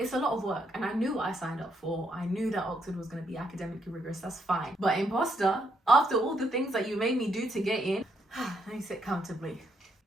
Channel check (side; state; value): both; normal; correlation 0.75